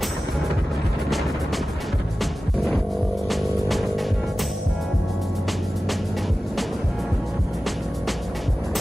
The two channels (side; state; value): both; normal; correlation 0.95